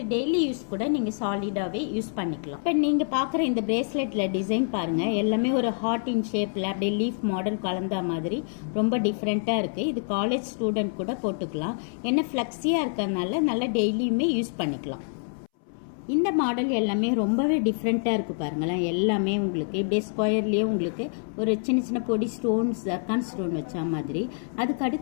டெய்லி யூஸ் கூட நீங்கள் சாலிடாகவே யூஸ் பண்ணிக்கலாம். இப்போ நீங்கள் பார்க்குற இந்த பிரேஸ்லெட்டில் டிசைன் பாருங்கள், எல்லாமே ஒரு ஹார்ட் இன் ஷேப்பில் அப்படியே லீஃப் மாடல் கலந்த மாதிரி ரொம்ப டிஃப்ரெண்ட்டாக இருக்குது. இது காலேஜ் ஸ்டூடெண்ட் கூட போட்டுக்கலாம். என்ன ஃப்ளெக்ஸியாக இருக்கிறதுனால நல்லா டெய்லியுமே யூஸ் பண்ணிக்கலாம். இந்த மாடல் எல்லாமே ரொம்பவே டிஃப்ரெண்ட்டாக இருக்குது பாருங்களேன். எல்லாமே உங்களுக்கு இப்படியே ஸ்கொயர்லேயே உங்களுக்கு ஒரு சின்ன சின்ன பொடி ஸ்டோன்ஸ், ஜர்கான் ஸ்டோன் வச்ச மாதிரி. அதுக்கு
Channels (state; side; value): silent; right; 60 dB below the other